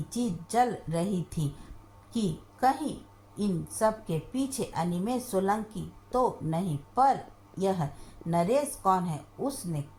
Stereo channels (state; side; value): identical; both; correlation 1.00